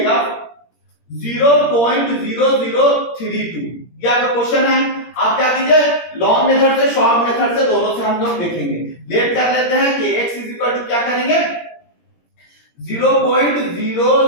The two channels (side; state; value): right; late; 17 ms